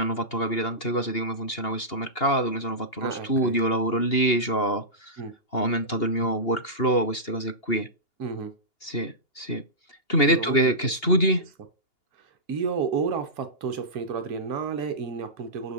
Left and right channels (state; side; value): late; right; 2.8 ms